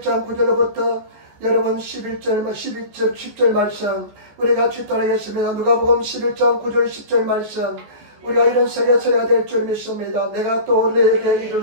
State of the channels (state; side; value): late; left; 14 ms